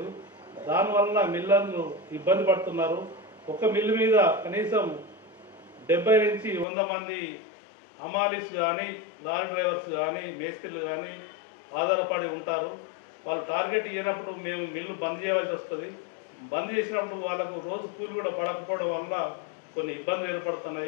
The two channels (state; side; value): drops out; right; at 6.7 s